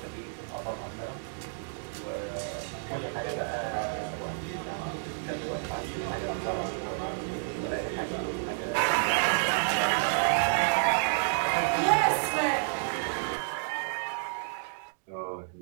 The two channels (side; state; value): left; silent; digital silence